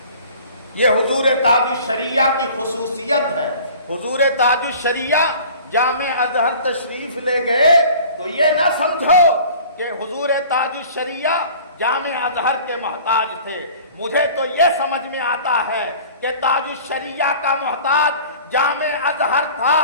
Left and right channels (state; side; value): inverted; both; correlation -0.46